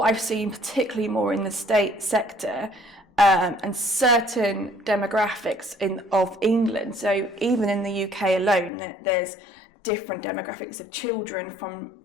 I've seen particularly more in the state sector and certain demographics of England, so even in the UK alone, there's different demographics of children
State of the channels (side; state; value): right; drops out; at 8.7 s